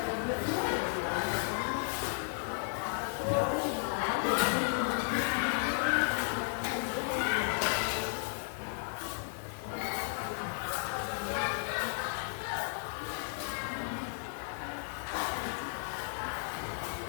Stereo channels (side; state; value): right; silent; digital silence